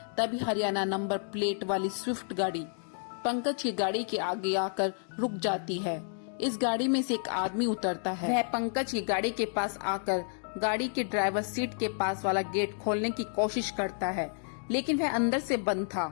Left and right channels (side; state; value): right; silent; 57 dB below the other